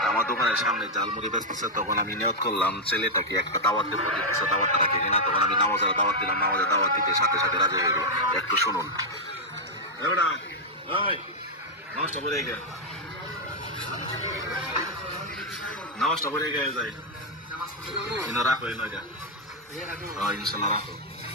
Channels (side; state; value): both; normal; correlation -0.02